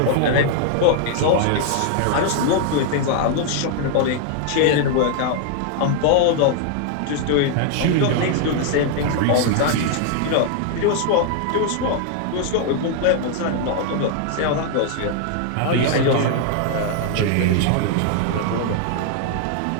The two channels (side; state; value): both; different; correlation 0.00